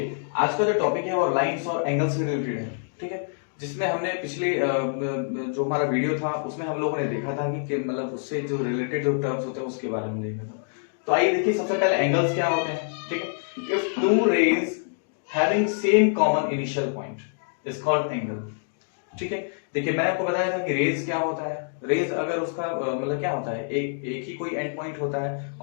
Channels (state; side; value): silent; right; digital silence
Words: आज का जो टॉपिक है वो लाइंस और एंगल से रिलेटेड है, ठीक है। जिसमें हमने पिछले जो हमारा वीडियो था उसमें हम लोगों ने देखा था कि मतलब उससे जो रिलेटेड जो टर्म्स होते हैं उसके बारे में देखा था। तो आइए देखिए, सबसे पहले एंगल्स क्या होते हैं, ठीक है। If two rays having same common initial point is called angle, ठीक है। देखिए, मैंने आपको बताया था कि रेज क्या होता है। रेज अगर उसका मतलब क्या होता है, एक ही कोई एंड पॉइंट होता है